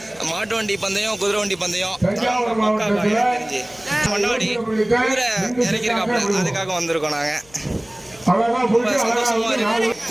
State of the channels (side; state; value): left; noise; hum, 26 dB below the sound